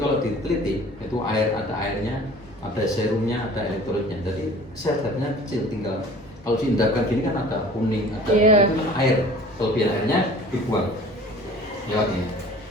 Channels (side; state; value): both; normal; correlation 0.46